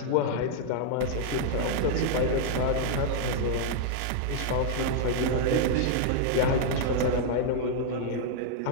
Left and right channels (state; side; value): different; both; correlation -0.01